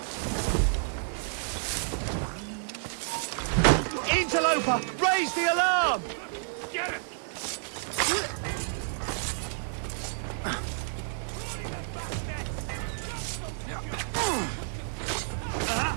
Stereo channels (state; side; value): silent; left; 58 dB below the other